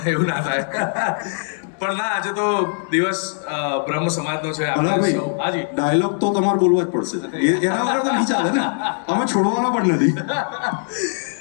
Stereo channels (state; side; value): silent; right; digital silence